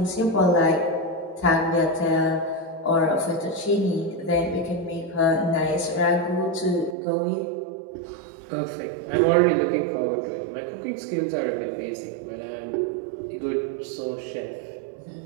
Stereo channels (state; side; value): drops out; left; at 7.0 s